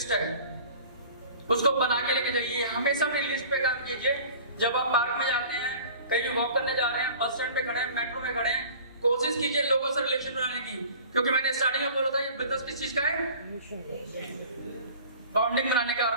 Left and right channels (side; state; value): both; inverted; correlation -0.44